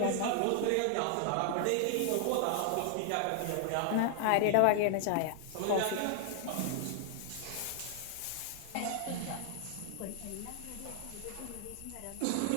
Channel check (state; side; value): different; both; correlation 0.00